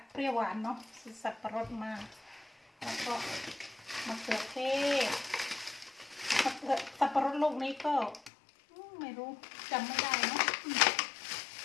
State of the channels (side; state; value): right; drops out; at 8.3 s